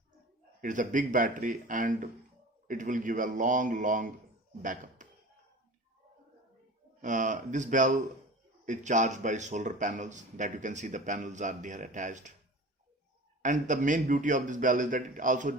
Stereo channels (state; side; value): normal; both; correlation 0.37